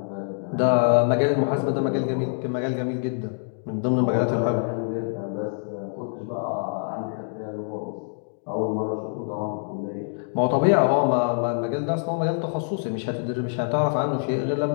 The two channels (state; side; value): silent; right; digital silence